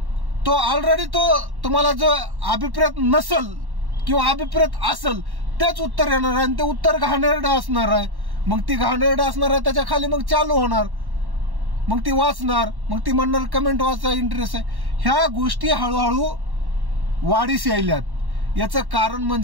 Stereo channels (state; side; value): late; left; 1.1 ms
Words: तो ऑलरेडी तो तुम्हाला जो अभिप्रेत नसल किंवा अभिप्रेत असल तेच उत्तर येणार आहे आणि ते उत्तर घाणेरडं असणार आहे. मग ती घाणेरडं असणार आहे, त्याच्या खाली मग चालू होणार, मग ती वाचणार, मग ती म्हणणार कमेंट वाचा इंटरेस्ट आहे. ह्या गोष्टी हळूहळू वाढीस यायल्यात. याचं कारण